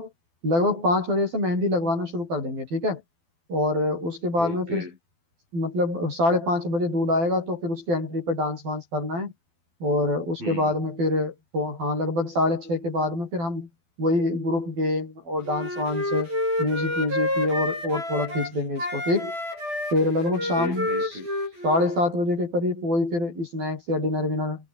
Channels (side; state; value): left; late; 12 ms